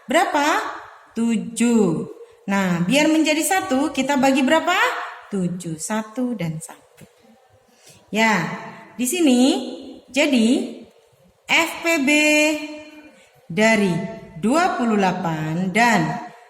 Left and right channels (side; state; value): both; identical; correlation 1.00